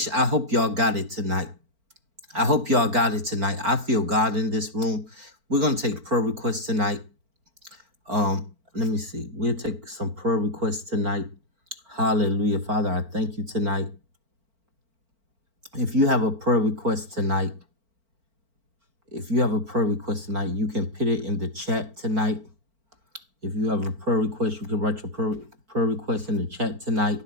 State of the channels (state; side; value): late; left; 4.4 ms